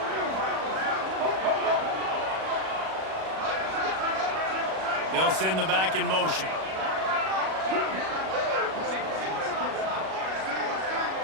They'll send the back in motion.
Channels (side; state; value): left; late; 37 ms